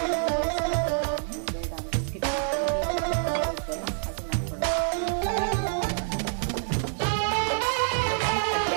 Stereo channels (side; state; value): left; silent; digital silence